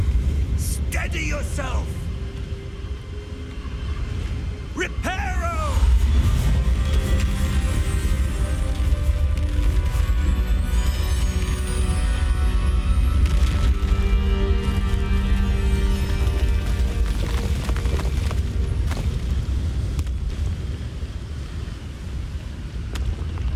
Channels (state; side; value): identical; both; correlation 1.00